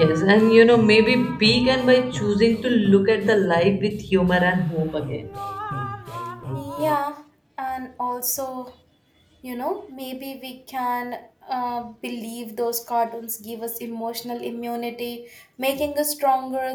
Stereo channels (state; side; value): identical; both; correlation 1.00